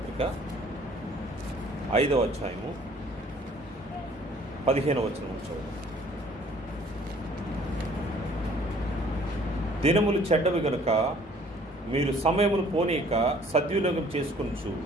5వ అధ్యాయము 15వ వచనం చదువు. దినములు చెడ్డవి గనుక మీరు సమయమును పోనీక సద్వినియోగం చేసుకొనుచు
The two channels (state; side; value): normal; both; correlation 0.56